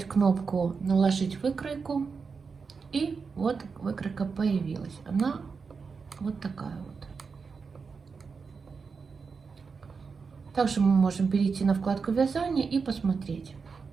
кнопку «Наложить выкройку». И вот выкройка появилась. Она вот такая вот. Также мы можем перейти на вкладку вязания и посмотреть.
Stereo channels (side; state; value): left; quieter; 5.2 dB